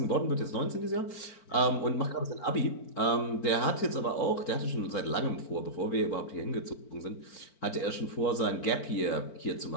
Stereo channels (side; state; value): right; late; 4.4 ms